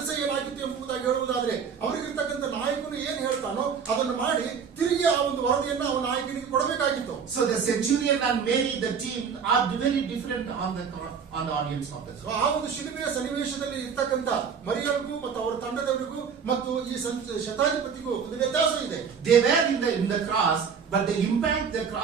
ಏನಾಗಿತ್ತು ಎಂಬುದಾಗಿ ಹೇಳುವುದಾದ್ರೆ ಅವರಿಗಿರ್ತಕ್ಕಂಥ ನಾಯಕನು ಏನ್ ಹೇಳ್ತಾನೋ ಅದನ್ನು ಮಾಡಿ ತಿರುಗಿ ಆ ಒಂದು ವರದಿಯನ್ನ ಅವನ ನಾಯಕನಿಗೆ ಕೊಡಬೇಕಾಗಿತ್ತು. So the centurion and Mary, the team, are very different on the audience of the so ಆ ಒಂದು ಶಿಲುಬೆಯ ಸನ್ನಿವೇಶದಲ್ಲಿ ಇರ್ತಕ್ಕಂಥ ಮರಿಯಳಿಗೂ ಮತ್ತು ಅವರ ತಂಡದವರಿಗೂ ಮತ್ತು ಈ ಶತಾಧಿಪತಿಗೂ ಒಂದು ವ್ಯತ್ಯಾಸ ಇದೆ. They were in the cross, but the impact the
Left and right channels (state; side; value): quieter; left; 6.5 dB